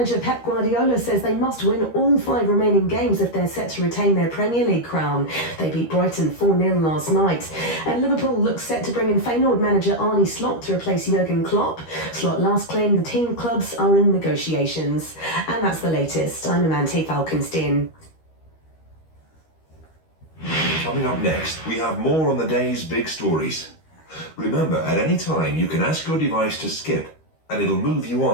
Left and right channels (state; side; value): late; right; 13 ms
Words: Pep Guardiola says they must win all 5 remaining games if they're set to retain their Premier League crown. They beat Brighton 4-0 last night. And Liverpool looks set to bring in Feyenoord manager Arne Slot to replace Jurgen Klopp. Slot last claimed the team clubs are in negotiations. And that's the latest. I'm Amante Falkenstein. Coming up next, we have more on the day's big stories. Remember, at any time you can ask your device to skip and it'll move you